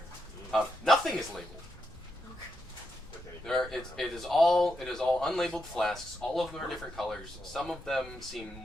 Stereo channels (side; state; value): both; normal; correlation 0.83